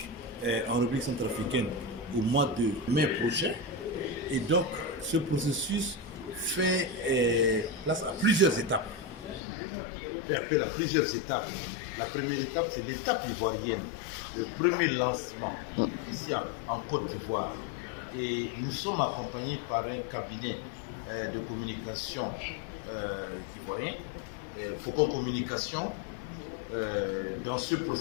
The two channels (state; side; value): drops out; right; at 9.4 s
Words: en République centrafricaine au mois de mai prochain. Et donc, ce processus fait place à plusieurs étapes. Fait appel à plusieurs étapes. La première étape, c'est l'étape ivoirienne, le premier lancement ici en Côte d'Ivoire. Et nous sommes accompagnés par un cabinet de communication ivoirien, Faucon Communication, dans ce